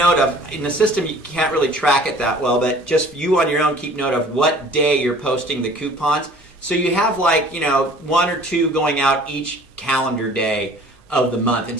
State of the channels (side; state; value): both; normal; correlation 0.50